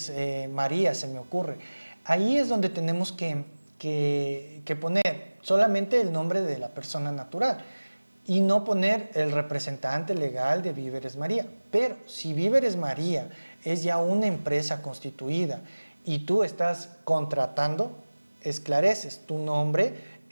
María, se me ocurre. Ahí es donde tenemos que poner solamente el nombre de la persona natural y no poner el representante legal de Víveres María. Pero si Víveres María es ya una empresa constituida y tú estás contratando, esclareces tu nombre,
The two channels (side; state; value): both; inverted; correlation -1.00